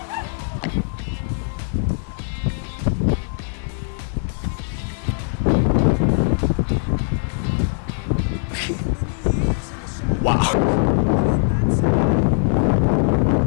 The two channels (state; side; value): silent; right; digital silence